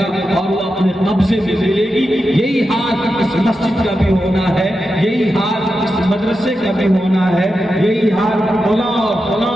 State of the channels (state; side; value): normal; both; correlation 0.89